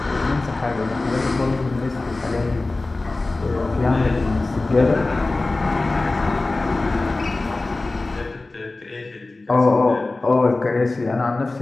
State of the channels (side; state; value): right; quieter; 3.2 dB